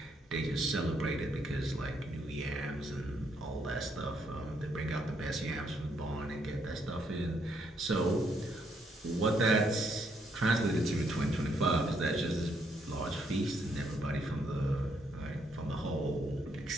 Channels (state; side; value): normal; both; correlation 0.73